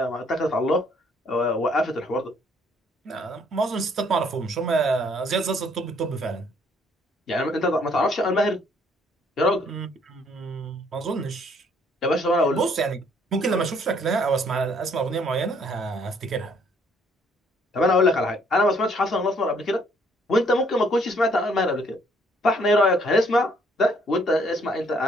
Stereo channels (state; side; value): normal; both; correlation 0.65